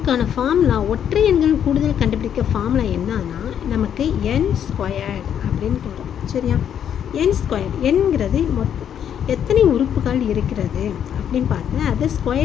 ஃபார்முலா, ஒற்றை எண்கள் கூடுதல் கண்டுபிடிக்க ஃபார்முலா என்னன்னா நமக்கு n² அப்படின்னு வரும், சரியா? n², என்கிறது எத்தனை உறுப்புகள் இருக்கிறது அப்படின்னு பார்த்து அதை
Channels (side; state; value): right; quieter; 9.1 dB